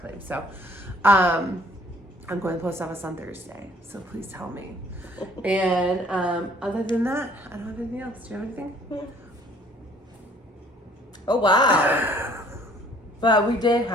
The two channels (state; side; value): normal; both; correlation 0.58